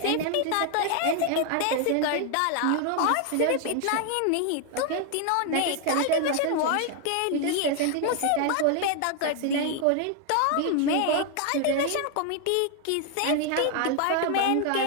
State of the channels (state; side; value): different; both; correlation 0.00